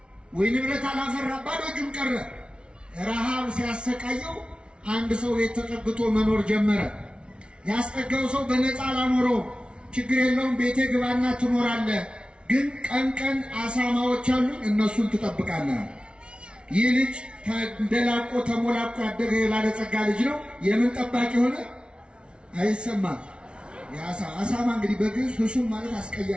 ወይ ንብረት አላፈራ፣ ባዶ እጁን ቀረ። ረሃብ ሲያሰቃየው አንድ ሰው ቤት ተጠግቶ መኖር ጀመረ። ያስጠጋው ሰው በነፃ አላኖረውም። ችግር የለውም ቤቴ ግባና ትኖራለህ፣ ግን ቀን ቀን አሳማዎች አሉ እነሱን ትጠብቃለህ። ይህ ልጅ ተንደላቆ ተሞላቆ ያደገ የባለጸጋ ልጅ ነው። የምን ጠባቂ ሆነ? አይሰማም። አሳማ እንግዲህ በግዕዝ ህሱም ማለት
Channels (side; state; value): left; late; 0.057 ms